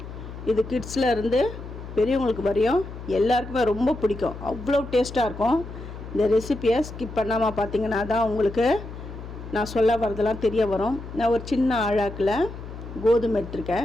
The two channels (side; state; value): left; noise; hum, 11 dB below the sound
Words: இது கிட்ஸில் இருந்து பெரியவங்களுக்கு வரையும் எல்லாருக்குமே ரொம்ப பிடிக்கும். அவ்வளோ டேஸ்ட்டாக இருக்கும். இந்த ரெசிப்பியை ஸ்கிப் பண்ணாமல் பார்த்தீங்கன்னா தான் உங்களுக்கு நான் சொல்ல வரதெல்லாம் தெரிய வரும். நான் ஒரு சின்ன அழாக்கில் கோதுமை